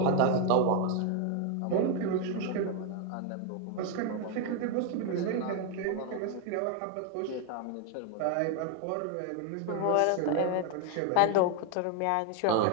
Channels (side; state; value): both; different; correlation 0.01